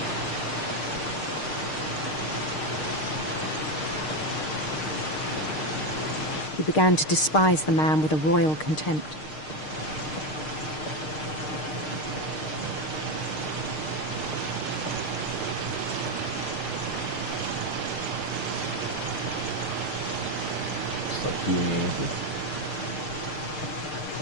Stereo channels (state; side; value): late; right; 6.6 ms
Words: He began to despise the man with a royal contempt. It's like doing anything.